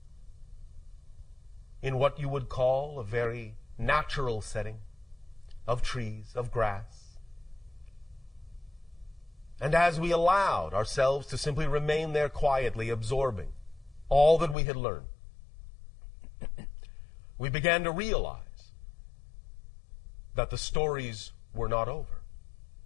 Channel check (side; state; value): right; drops out; at 14.6 s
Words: in what you would call a very natural setting of trees, of grass. And as we allowed ourselves to simply remain there quietly, absorbing all that we had learned, we began to realize that the stories were not over.